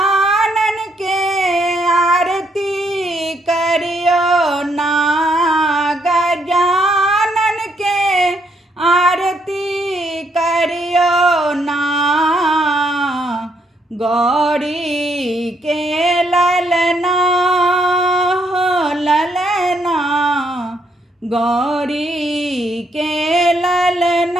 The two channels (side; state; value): both; normal; correlation 0.73